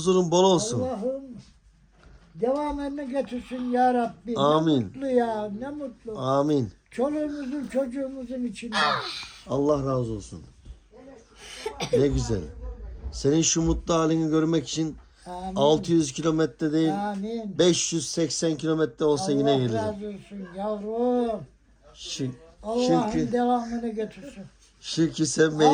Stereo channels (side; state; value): both; identical; correlation 1.00